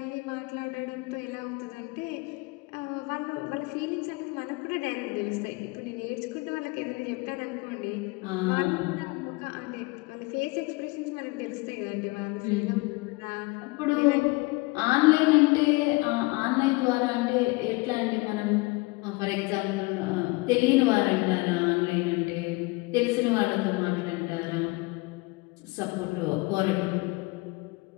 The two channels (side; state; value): right; quieter; 25.3 dB